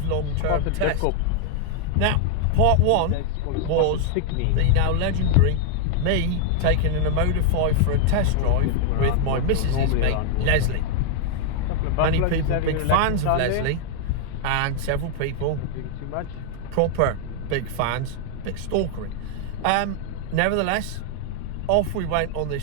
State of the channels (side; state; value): both; different; correlation 0.00